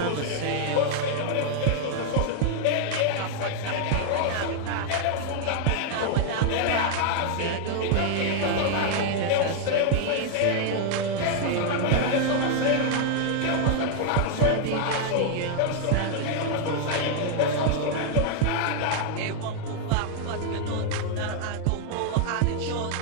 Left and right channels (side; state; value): both; different; correlation 0.00